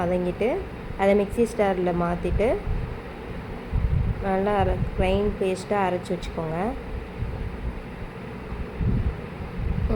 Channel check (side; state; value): both; identical; correlation 1.00